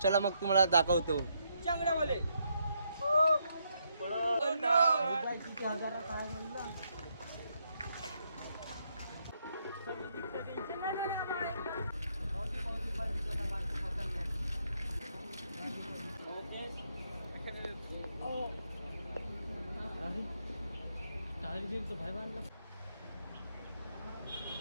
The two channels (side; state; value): both; inverted; correlation -0.76